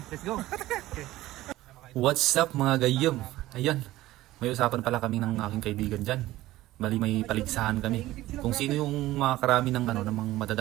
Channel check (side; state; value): left; quieter; 16.3 dB